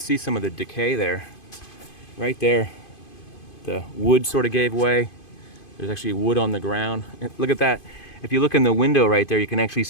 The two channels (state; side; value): late; right; 2.5 ms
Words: some of the decay there. Right there, the wood sort of gave way. There's actually wood on the ground. Look at that. If you look in the window right there, you can actually